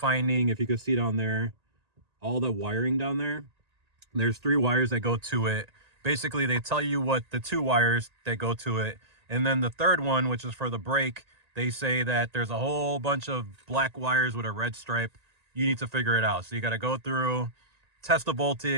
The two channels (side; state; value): left; late; 1.8 ms